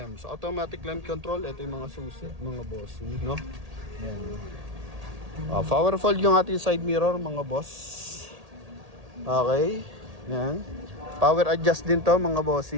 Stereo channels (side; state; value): left; late; 1.8 ms